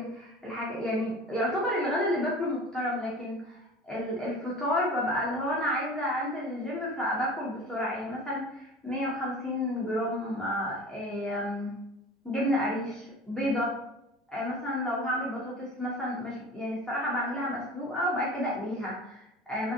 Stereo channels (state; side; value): normal; both; correlation 0.38